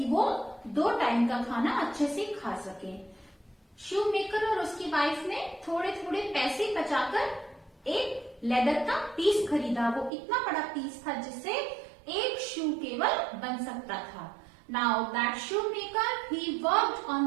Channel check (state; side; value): drops out; left; at 10.1 s